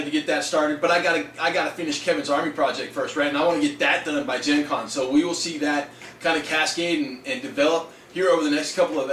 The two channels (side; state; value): both; identical; correlation 1.00